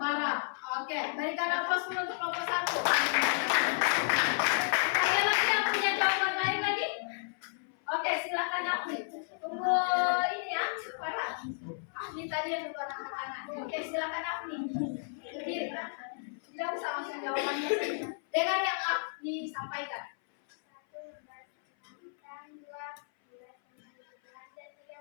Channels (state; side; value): silent; right; 56 dB below the other